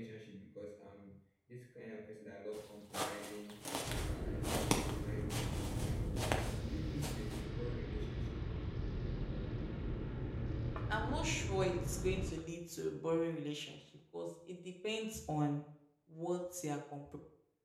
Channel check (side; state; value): both; identical; correlation 1.00